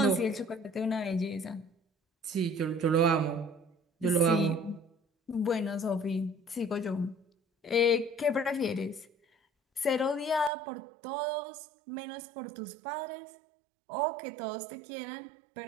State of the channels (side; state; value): left; drops out; at 10.5 s